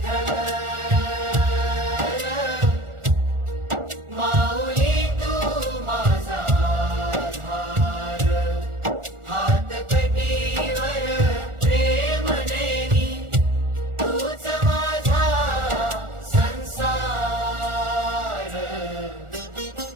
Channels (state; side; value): late; left; 1.4 ms